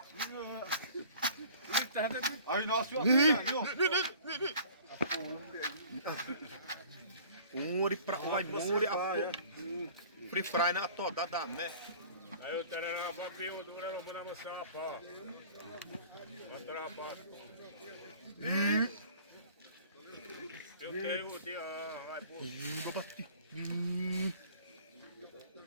Aí nós Uri pra vai muri a free fry na toda da né. Aí o terá papinho dura no mana mosapa. Andra pa. Eu tenho o dia, vai pô.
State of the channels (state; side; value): inverted; both; correlation -0.48